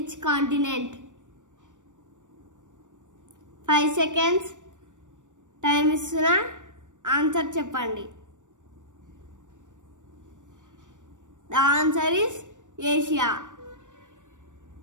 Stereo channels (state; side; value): late; left; 0.86 ms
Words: continent? 5 seconds time istuna answer cheppandi. The answer is Asia.